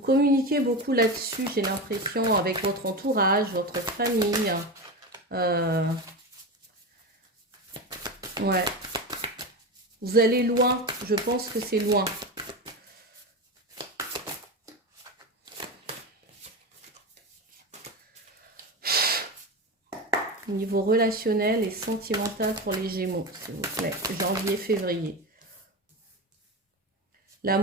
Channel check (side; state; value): both; normal; correlation 0.21